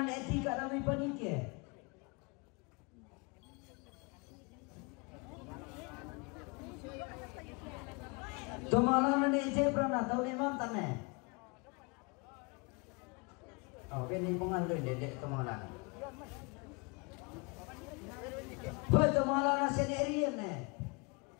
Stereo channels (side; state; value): right; quieter; 30.5 dB